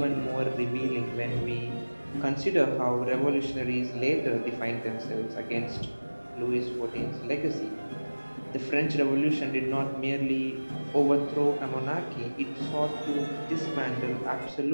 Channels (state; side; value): inverted; both; correlation -1.00